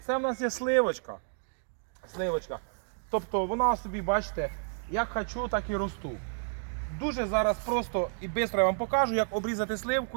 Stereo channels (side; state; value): left; silent; digital silence